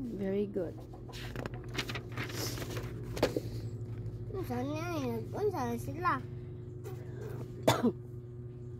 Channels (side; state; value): both; identical; correlation 1.00